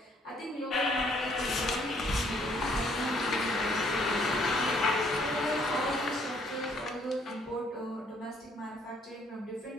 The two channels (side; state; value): both; normal; correlation 0.65